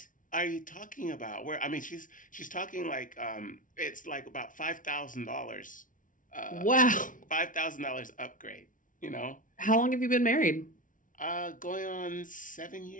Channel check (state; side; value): late; right; 0.38 ms